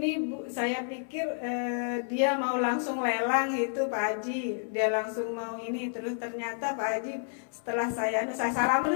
Bu, saya pikir dia mau langsung lelang gitu Pak Haji, dia langsung mau ini. Terus ternyata Pak Haji setelah saya salam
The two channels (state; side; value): silent; right; 58 dB below the other